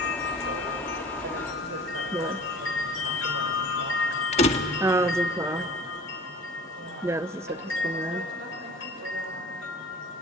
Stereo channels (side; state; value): both; normal; correlation 0.43